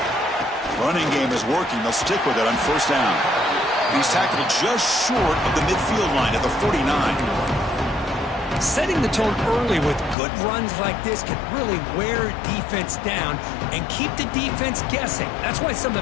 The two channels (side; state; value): right; drops out; at 10.2 s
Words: Running game is working. They'll stick with it on first down. He's tackled just short of the midfield line at the 49. Setting the tone early with good runs like this can really wear defense down and keep the defense guessing. That's why some